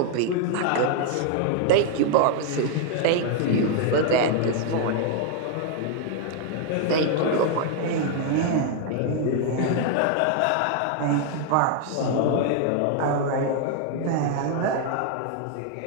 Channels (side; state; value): both; different; correlation 0.00